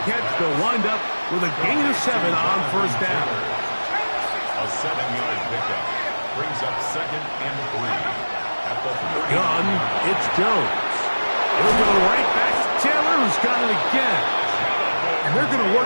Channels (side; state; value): both; inverted; correlation -1.00